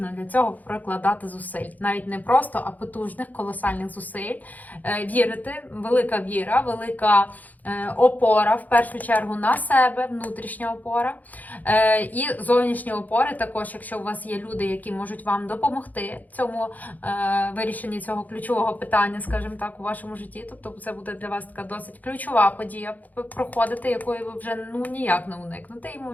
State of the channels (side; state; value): right; late; 0.080 ms